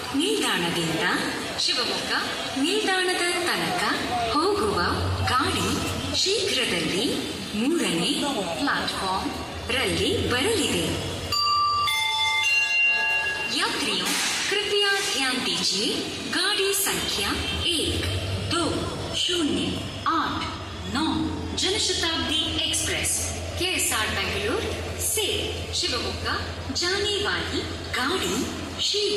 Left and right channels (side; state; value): both; identical; correlation 1.00